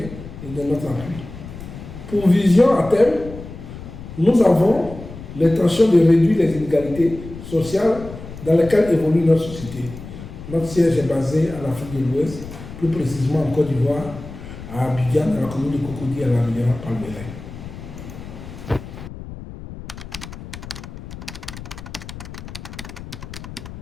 et de notre appui. Pour vision à terme, nous avons l'intention de réduire les inégalités sociales dans lesquelles évolue notre société. Notre siège est basé en Afrique de l'Ouest, plus précisément en Côte d'Ivoire, à Abidjan, dans la commune de Cocody, à la rivière Palmeraie.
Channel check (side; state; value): left; noise; rumble, 13 dB below the sound